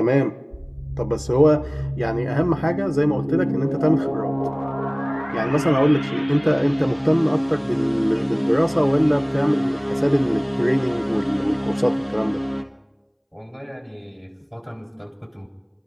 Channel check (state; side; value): identical; both; correlation 1.00